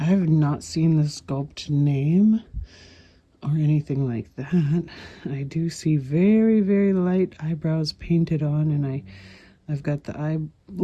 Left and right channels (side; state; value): both; identical; correlation 1.00